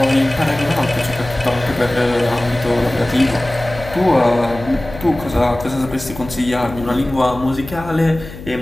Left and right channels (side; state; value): left; noise; hum, 14 dB below the sound